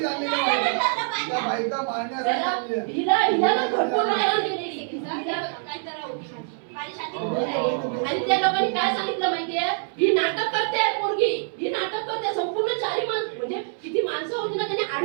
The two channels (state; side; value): silent; left; 60 dB below the other